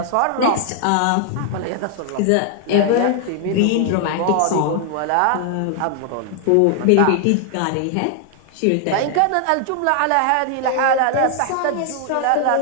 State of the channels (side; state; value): both; different; correlation 0.00